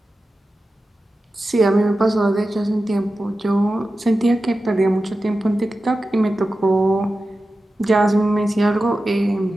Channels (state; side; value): normal; both; correlation 0.93